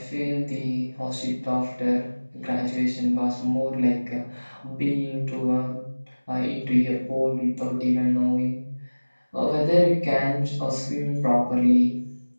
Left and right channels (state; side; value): inverted; both; correlation -1.00